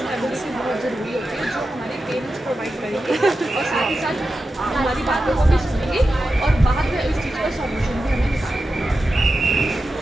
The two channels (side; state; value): both; normal; correlation 0.91